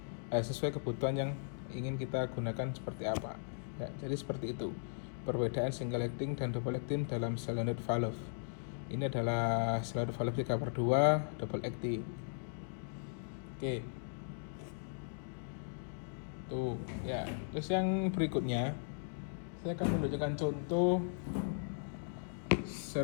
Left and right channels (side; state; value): right; silent; digital silence